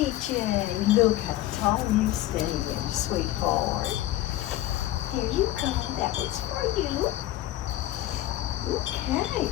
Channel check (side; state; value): right; quieter; 14.6 dB